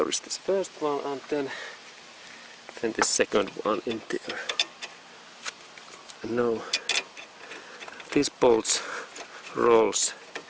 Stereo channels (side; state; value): both; identical; correlation 1.00